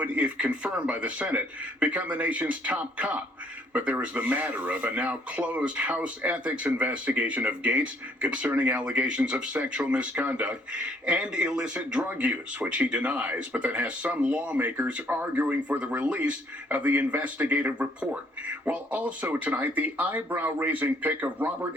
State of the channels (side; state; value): both; normal; correlation 0.65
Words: if confirmed by the Senate, become the nation's top cop. But there is the matter of a now closed House ethics investigation of Gaetz concerning allegations of sexual misconduct and illicit drug use, which he denies, but that has some lawmakers arguing for the release of the investigative report. While also tonight, the eyebrow-raising pick of Robert